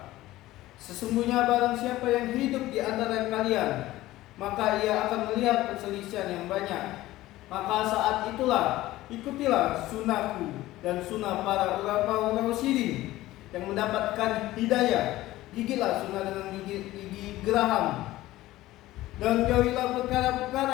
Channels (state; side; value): quieter; right; 16.6 dB